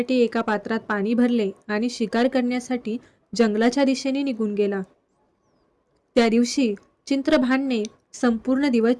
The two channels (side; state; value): both; identical; correlation 1.00